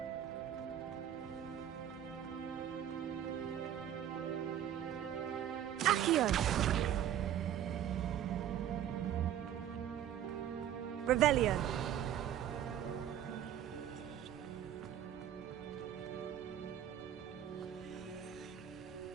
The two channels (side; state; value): left; quieter; 10.7 dB